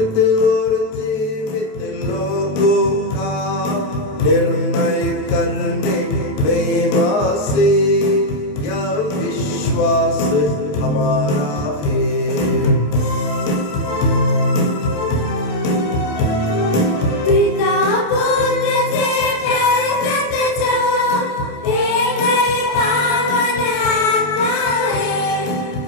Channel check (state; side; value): late; right; 27 ms